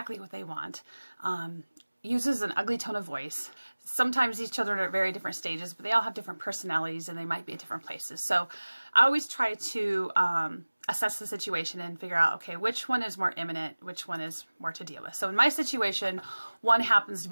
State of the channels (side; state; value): both; inverted; correlation -1.00